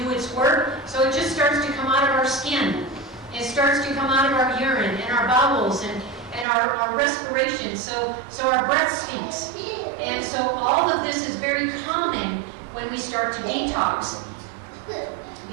its work. So it just starts to come out of our skin. It starts to come out of our urine and our bowels and our respiration. So our breath stinks. And so all of this is very common when we start to detox.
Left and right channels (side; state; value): left; drops out; at 6.5 s